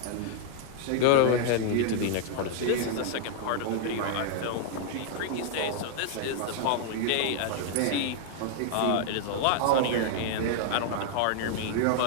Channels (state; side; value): different; both; correlation 0.00